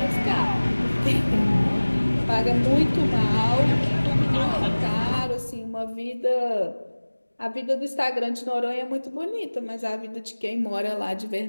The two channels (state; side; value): inverted; both; correlation -1.00